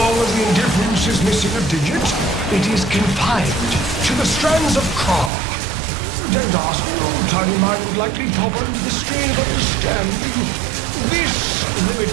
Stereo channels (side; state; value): left; drops out; at 5.3 s